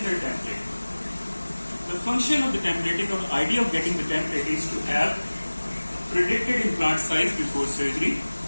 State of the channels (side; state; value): both; inverted; correlation -1.00